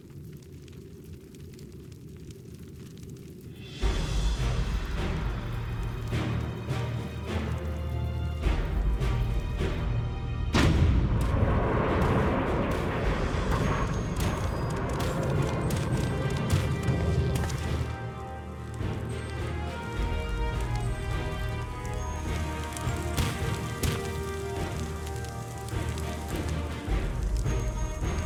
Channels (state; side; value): identical; both; correlation 1.00